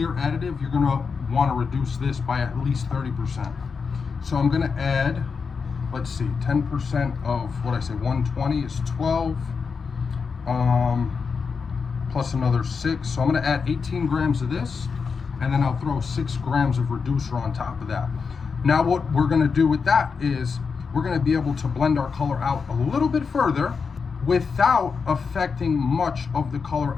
additive, you're gonna wanna reduce this by at least 30%. So I'm gonna add, let's see, 10% of what I say, 120 is 12, plus another 6. So I'm gonna add 18 grams of this, and then I'll throw 6 grams of reducer on top of that. Now what we're gonna do with that is we're gonna be able to blend our color out a little bit further without affecting much of the color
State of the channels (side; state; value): right; quieter; 5.4 dB